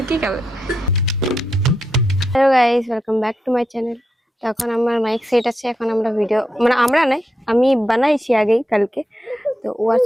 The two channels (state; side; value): normal; both; correlation 0.84